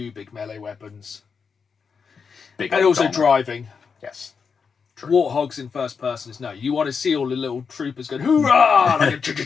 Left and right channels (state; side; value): quieter; right; 5.8 dB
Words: big melee weapons. Big and also Donner. driving. Yes. True. Warthogs in first person is no. You want to see all the little troopers going, hoorah! Like